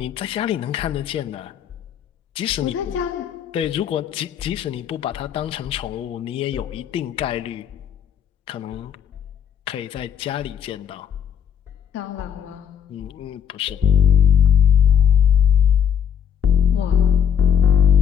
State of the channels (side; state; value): right; quieter; 8.5 dB